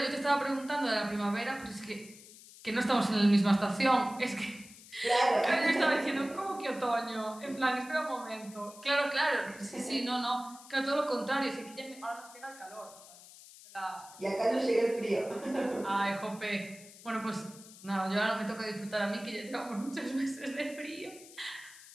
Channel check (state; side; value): noise; left; hiss, 19 dB below the sound